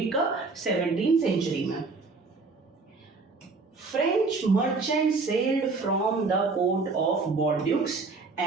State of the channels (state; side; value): quieter; left; 4.0 dB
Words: कब? 17th सेंचुरी में। French merchants sailed from the port of Bordeaux